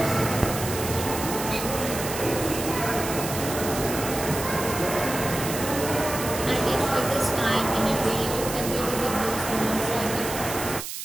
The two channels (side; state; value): right; noise; hiss, 7 dB below the sound